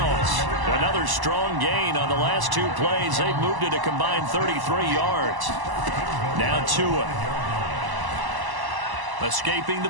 Another strong gain on the last 2 plays. They've moved it a combined 33 yards. Now Tua. Escaping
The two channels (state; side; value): late; left; 1.0 ms